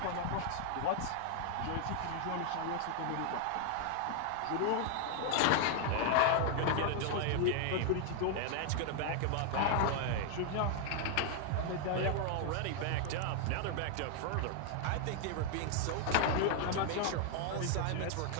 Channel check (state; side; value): different; both; correlation 0.00